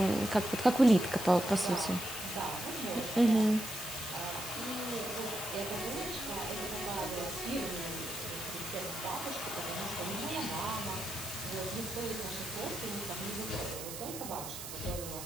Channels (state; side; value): noise; right; hiss, 8 dB below the sound